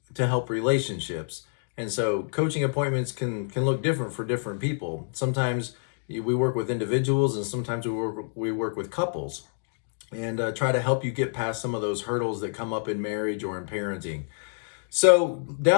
to help relationships. And so coaching appointments can look different for different people. Sometimes we work with individuals, and sometimes we work with couples, and try to help you get past some of those hurdles that come up in marriage or in parenting. So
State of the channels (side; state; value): right; silent; digital silence